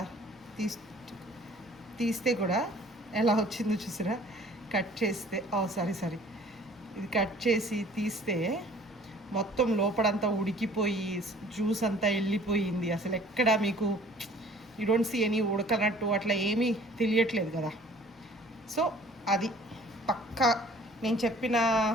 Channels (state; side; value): normal; both; correlation 0.52